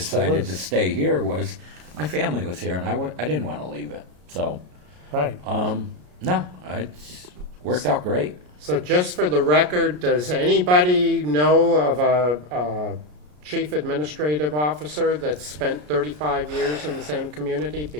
is. to stay here was my family was here, and I didn't want to leave it. So, Right. no, it's worked out great. So just for the record, does anybody know of a chief administrative officer that's spent 35 years in the same community?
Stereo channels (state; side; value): late; left; 33 ms